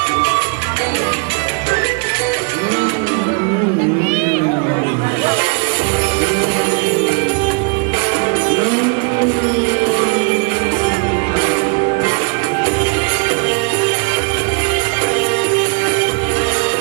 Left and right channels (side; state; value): left; quieter; 35.3 dB